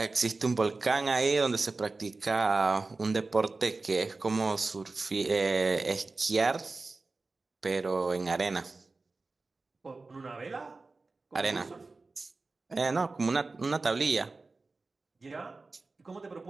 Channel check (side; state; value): left; quieter; 3.6 dB